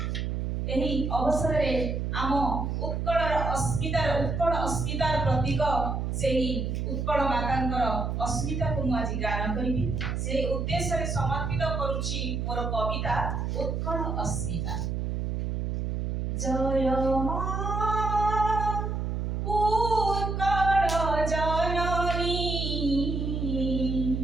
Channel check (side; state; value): right; noise; hum, 1 dB below the sound